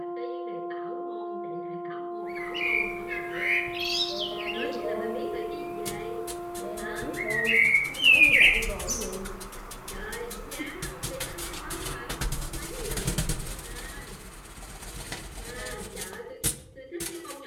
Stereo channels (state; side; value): identical; both; correlation 1.00